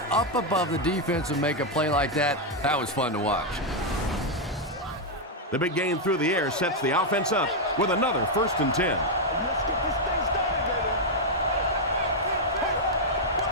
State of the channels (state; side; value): normal; both; correlation -0.01